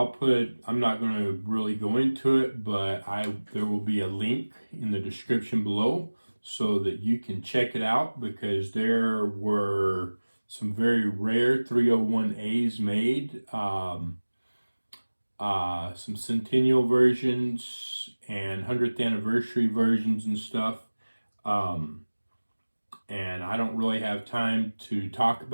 not going to really go into it, but there will be a link in the description below so that you can check it out, because there were some very rare 301As made, some centennial versions and 100th anniversary versions and stuff. And I don't really have time to talk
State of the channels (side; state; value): both; inverted; correlation -1.00